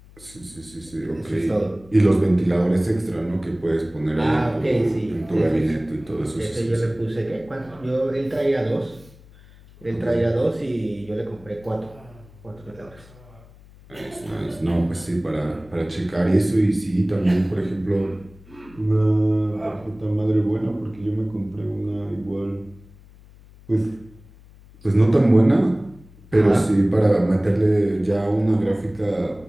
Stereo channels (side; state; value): left; noise; hum, 23 dB below the sound